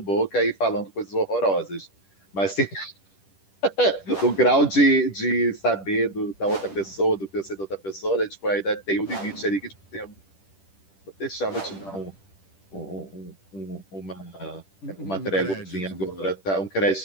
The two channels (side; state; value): right; late; 10 ms